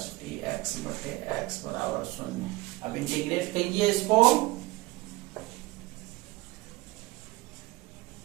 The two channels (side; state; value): left; quieter; 20.6 dB